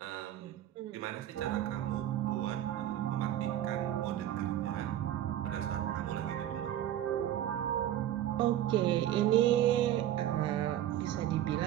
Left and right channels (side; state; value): left; quieter; 12.3 dB